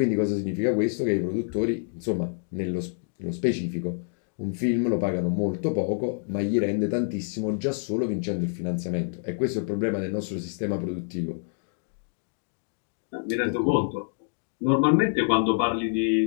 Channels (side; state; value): right; silent; digital silence